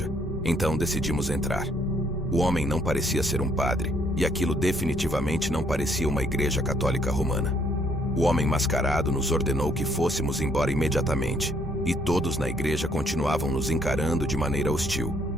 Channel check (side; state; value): both; normal; correlation 0.67